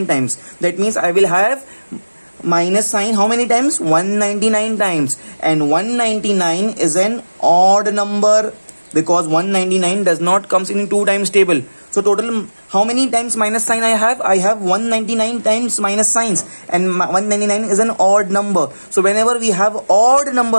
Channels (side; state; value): both; inverted; correlation -1.00